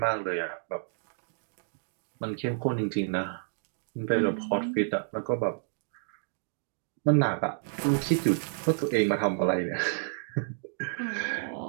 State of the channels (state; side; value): silent; left; digital silence